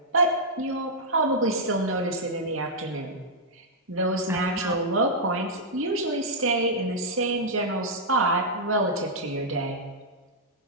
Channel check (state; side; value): normal; both; correlation -0.08